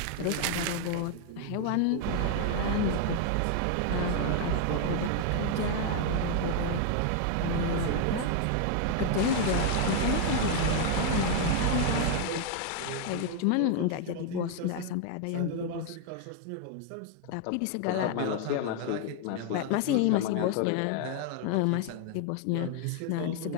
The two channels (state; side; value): different; both; correlation 0.00